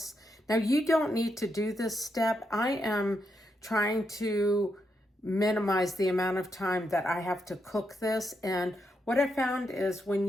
Now, you don't need to do this step. I am trying to minimize the amount of time that I have to cook this. And what I found is when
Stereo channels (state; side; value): normal; both; correlation 0.82